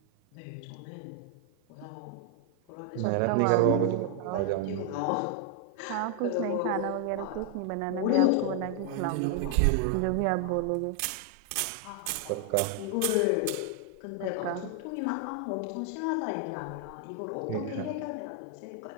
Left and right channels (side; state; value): both; different; correlation 0.00